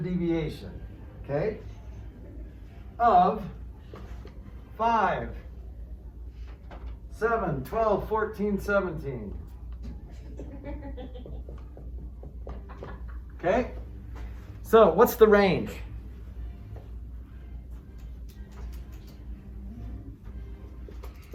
deviation, okay, of 5, 7, 12, 14, 17. Okay? So, what's the range?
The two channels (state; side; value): identical; both; correlation 1.00